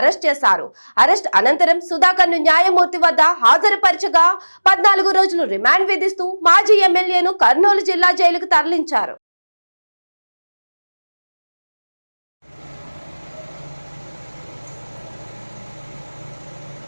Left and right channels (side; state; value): both; inverted; correlation -1.00